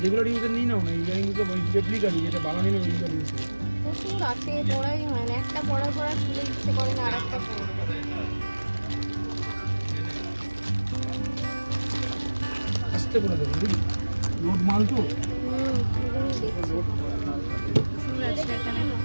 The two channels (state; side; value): inverted; both; correlation -1.00